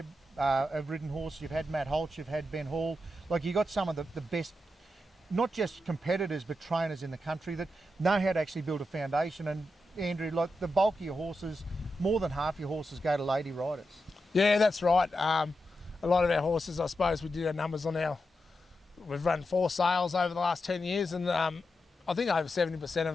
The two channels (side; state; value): both; normal; correlation 0.87